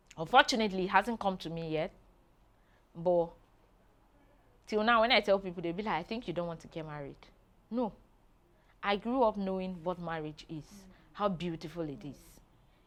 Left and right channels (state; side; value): identical; both; correlation 1.00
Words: Unfortunately, it hasn't come to me yet. But till now, when I tell people, they'll be like, I think you don't want to get married. No. I grew up knowing what marriage is, how beautiful it is.